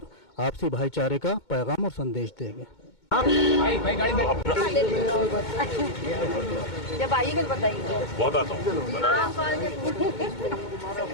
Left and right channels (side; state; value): right; late; 2.2 ms